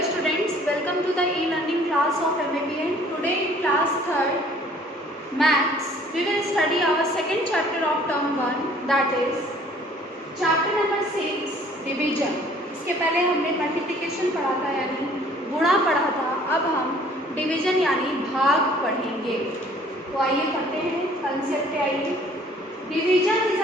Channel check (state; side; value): normal; both; correlation 0.56